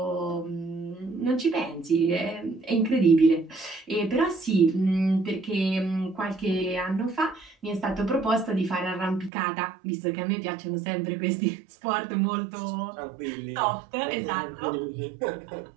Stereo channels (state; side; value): drops out; left; at 9.3 s